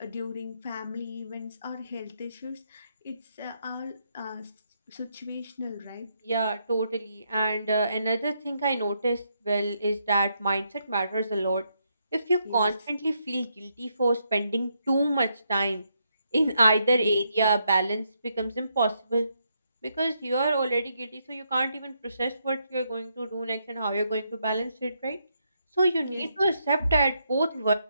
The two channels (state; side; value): inverted; both; correlation -0.78